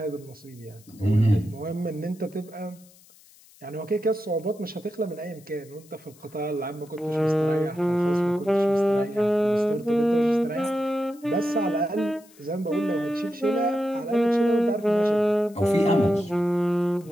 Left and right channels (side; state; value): left; noise; hiss, 26 dB below the sound